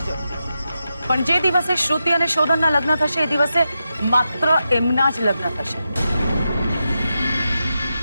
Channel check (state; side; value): inverted; both; correlation -0.88